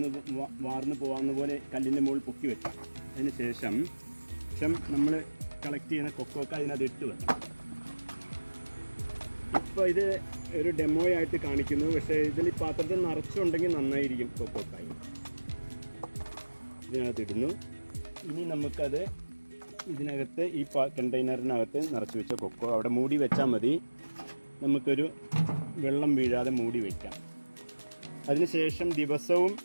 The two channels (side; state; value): both; inverted; correlation -1.00